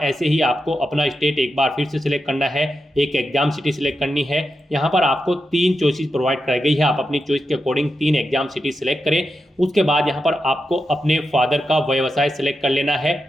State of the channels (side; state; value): both; normal; correlation 0.88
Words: ऐसे ही आपको अपना स्टेट एक बार फिर से सिलेक्ट करना है, एक एग्जाम सिटी सिलेक्ट करनी है। यहाँ पर आपको 3 चॉइसेस प्रोवाइड कराई गई है, आप अपनी चॉइस के अकॉर्डिंग 3 एग्जाम सिटी सिलेक्ट करें। उसके बाद यहाँ पर आपको अपने फादर का व्यवसाय सिलेक्ट कर लेना है